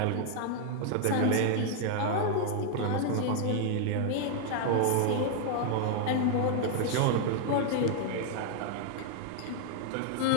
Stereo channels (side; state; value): both; different; correlation 0.00